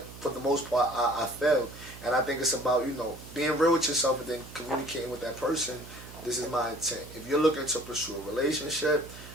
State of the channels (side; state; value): right; noise; hum, 16 dB below the sound